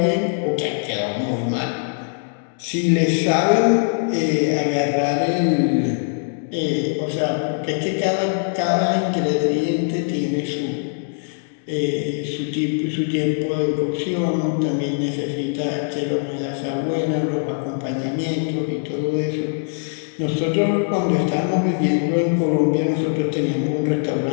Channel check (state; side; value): silent; right; digital silence